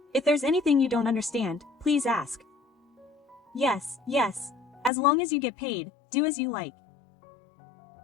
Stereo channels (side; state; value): right; drops out; at 4.9 s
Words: If there's anything you don't understand, please ask. Yes, yes. As long as you get paid, do as you like.